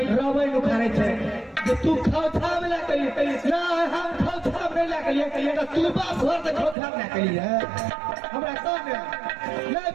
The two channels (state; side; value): drops out; left; at 6.8 s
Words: रबै उखाड़े छे जे तू खौछा में ला करी ना, हम खौछा में ला करी तो तू बाप घर से खौछा में ला करी है। हमरा कौन है नहीं